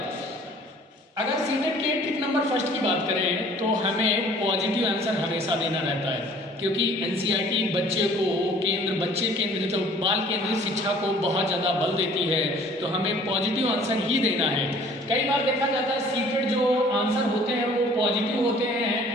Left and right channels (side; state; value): both; normal; correlation 0.53